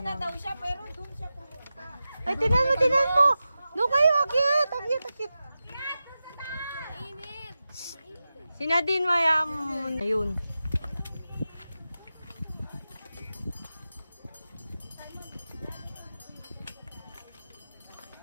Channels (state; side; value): inverted; both; correlation -0.93